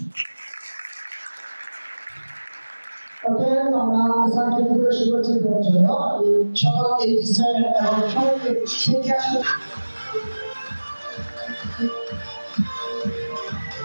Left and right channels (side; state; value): both; inverted; correlation -1.00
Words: আমরা স্যারকে পরিবেশন করছি জন্য সকল এই স্যার এবং সকলকে শিক্ষা